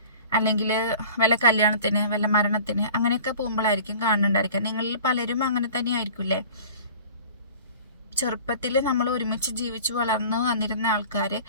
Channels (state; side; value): inverted; both; correlation -0.44